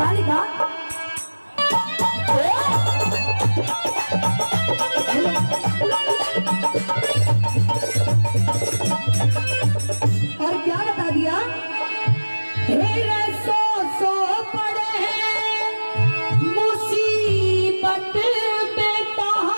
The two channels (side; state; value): both; inverted; correlation -1.00